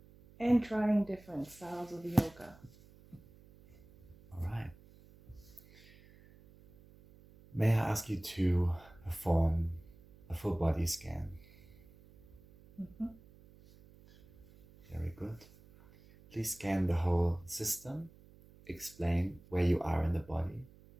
And trying different styles of yoga. All right. May I ask you to perform a full body scan? Mm-hmm. Very good. Please scan the whole system. Explain where you are in the body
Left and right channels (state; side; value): noise; right; hum, 24 dB below the sound